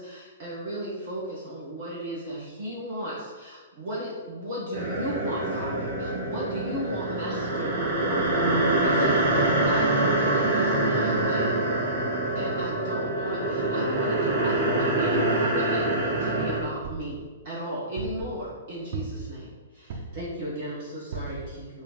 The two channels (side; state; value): both; inverted; correlation -0.33